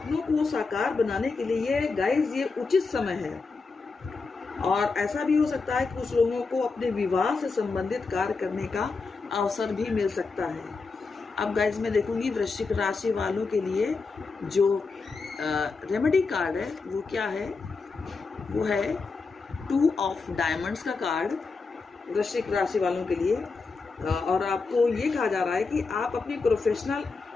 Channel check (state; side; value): quieter; right; 4.3 dB